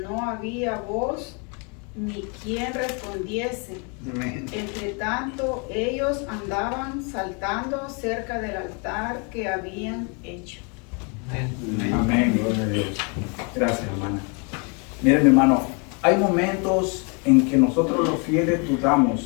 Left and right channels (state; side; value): quieter; right; 34.9 dB